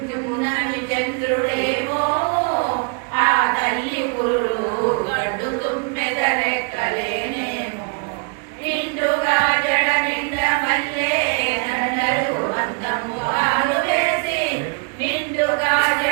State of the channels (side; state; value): left; quieter; 37.6 dB